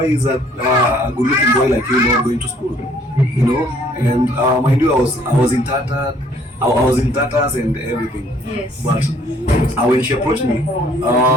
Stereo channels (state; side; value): normal; both; correlation 0.61